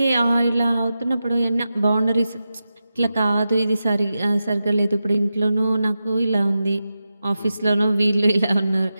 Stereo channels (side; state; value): both; inverted; correlation -0.91